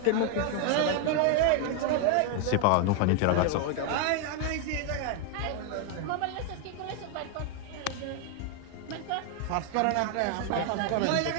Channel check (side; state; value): both; different; correlation 0.01